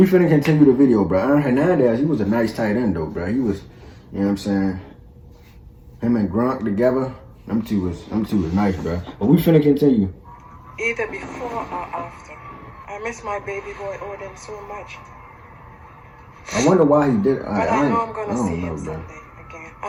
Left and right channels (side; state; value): both; identical; correlation 1.00